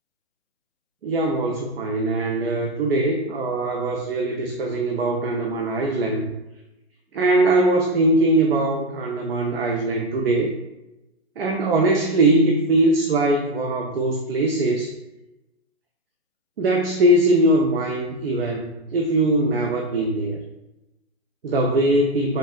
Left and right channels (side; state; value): both; normal; correlation 0.11